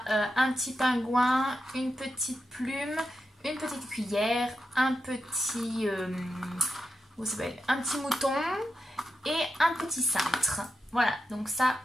un petit pingouin, une petite plume, une petite cuillère, un petit mouton et un petit cintre. Voilà, donc ça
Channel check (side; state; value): both; normal; correlation 0.87